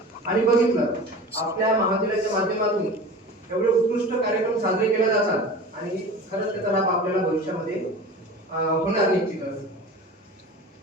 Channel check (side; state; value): both; normal; correlation 0.35